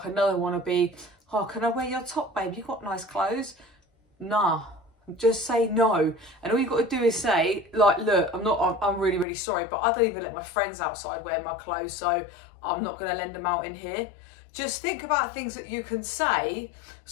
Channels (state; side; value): drops out; right; at 9.2 s